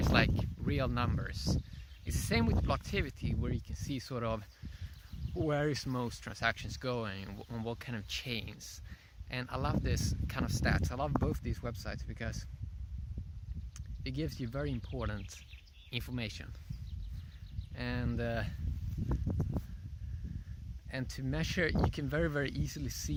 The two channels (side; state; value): both; identical; correlation 1.00